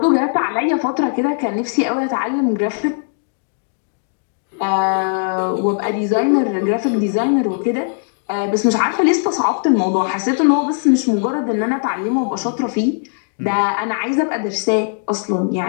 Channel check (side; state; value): right; silent; digital silence